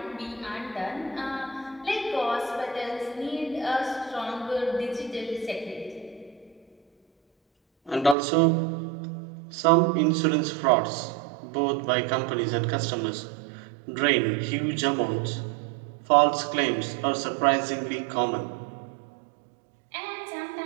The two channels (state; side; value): drops out; left; at 8.2 s